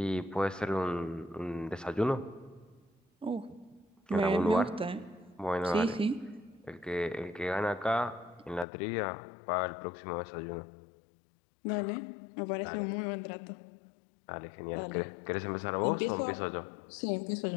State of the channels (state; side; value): drops out; right; at 8.7 s